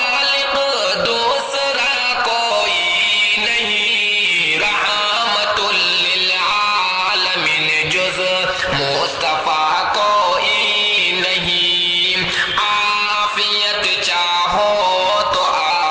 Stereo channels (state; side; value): identical; both; correlation 1.00